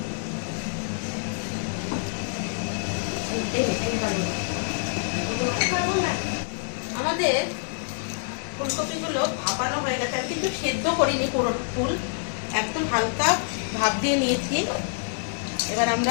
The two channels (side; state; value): right; silent; digital silence